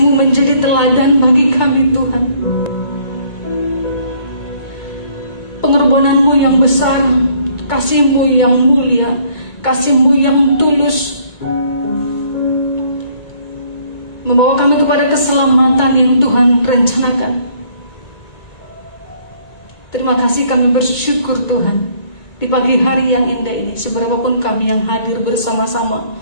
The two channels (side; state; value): right; late; 2.2 ms